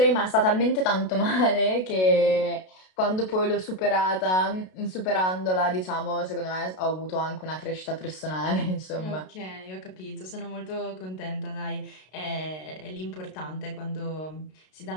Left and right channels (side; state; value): right; late; 32 ms